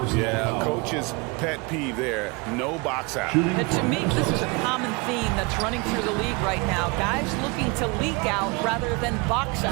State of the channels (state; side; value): quieter; left; 28.2 dB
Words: Yeah, coach's pet peeve there. No box out. And to me, this is a common theme that's running through the league right now. Guys looking to leak out rather than box